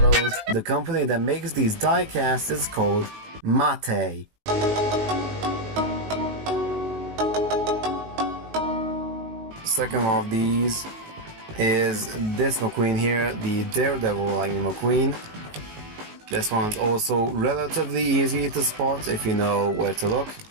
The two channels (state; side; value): late; left; 19 ms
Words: the company that makes these diecasts is called Mate. Second of these is this McQueen here, the Daredevil Lightning McQueen. This one's also relatively easy to spot if you know where to look.